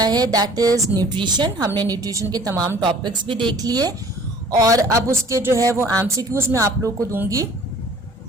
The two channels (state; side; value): normal; both; correlation 0.51